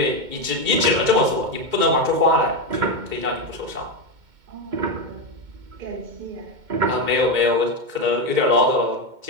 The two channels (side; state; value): left; late; 2.2 ms